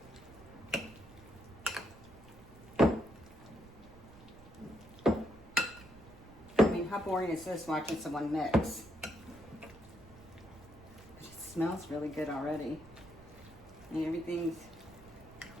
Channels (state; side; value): noise; right; rumble, 20 dB below the sound